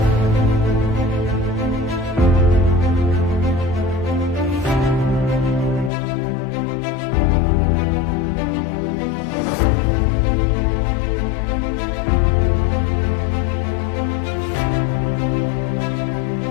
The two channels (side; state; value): right; drops out; at 5.9 s